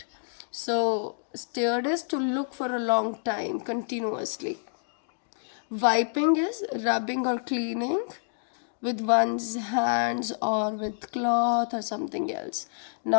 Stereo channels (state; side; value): silent; right; digital silence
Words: So stared is to look for a long time continuously. Wiping is rubbing or cleaning with one's hands or with cloth or something else.